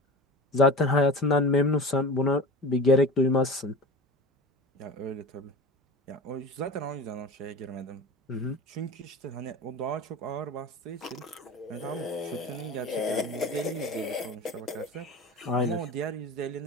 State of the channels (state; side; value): normal; both; correlation 0.34